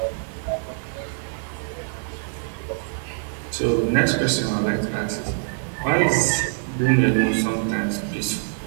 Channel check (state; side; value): silent; left; digital silence